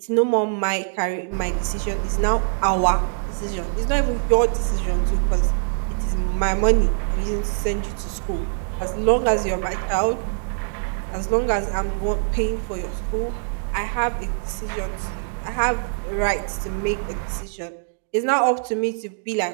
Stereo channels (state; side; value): silent; left; digital silence